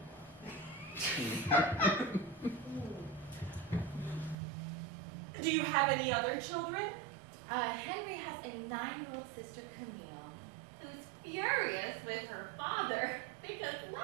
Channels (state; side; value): drops out; left; at 4.4 s